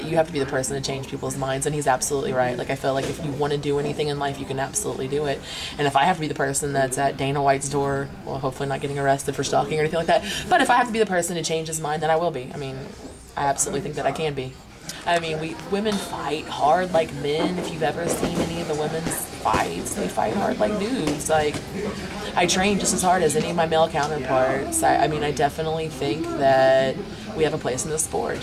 you have to be the person to change people's minds, and he's absolutely right. Like I feel like if you want to do anything in life, you can absolutely do it, and if I have to be the person that's at Dana White's door, well, hopefully not getting arrested for stalking or anything like that, but if I have to be the person to change his mind, then I will be. I mean, I absolutely think that I can be. I mean, women fight hard like men. If you've ever seen any of the women's fights, they fight hard like dudes. Like, I train just as hard as any of my male counterparts. I mean, I definitely think that we have a place in the sport,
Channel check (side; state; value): both; identical; correlation 1.00